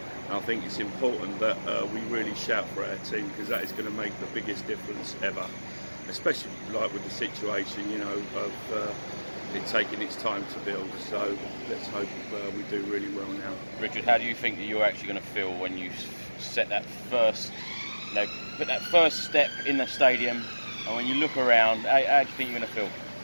And I think it's important that we really shout for our team, because that is going to make the biggest difference ever, especially like with the situation, you know, of it taking its time to build. So let's hope we do really well now. Richard, how do you think that you're actually going to feel when you set that first, you know, put that first step in the stadium, and when you look around, how do you think you're going to feel?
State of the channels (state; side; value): inverted; both; correlation -1.00